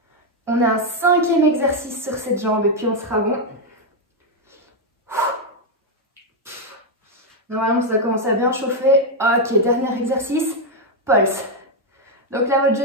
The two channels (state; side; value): normal; both; correlation 0.02